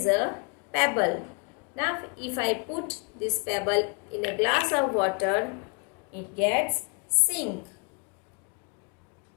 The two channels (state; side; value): quieter; right; 36.2 dB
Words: a pebble. Now if I put this pebble in a glass of water, it gets sink.